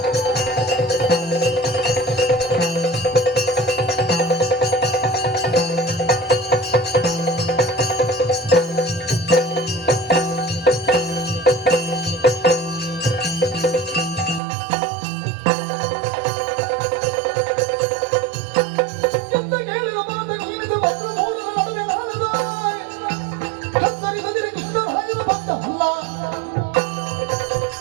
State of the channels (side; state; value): left; drops out; at 14.4 s